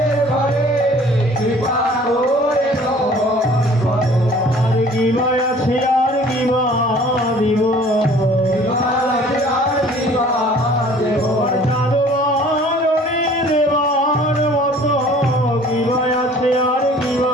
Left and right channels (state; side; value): normal; both; correlation 0.51